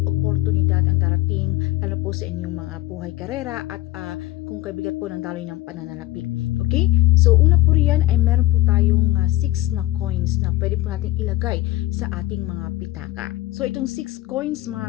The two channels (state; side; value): quieter; right; 17.3 dB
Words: oportunidad ang darating, lalo po sa inyong mga buhay karera at kung kaibigat po ng daloy ng pananalapi. Okay? So una po riyan ay meron po tayong 6 na coins na pwede po natin ilagay sa ating mga pitaka. So itong 6 coins